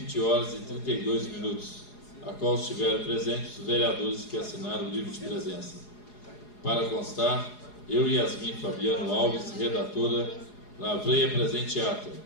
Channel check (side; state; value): right; late; 4.8 ms